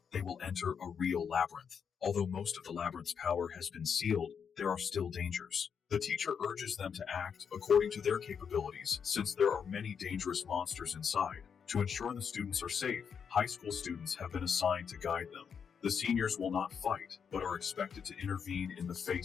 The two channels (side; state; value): right; quieter; 6.9 dB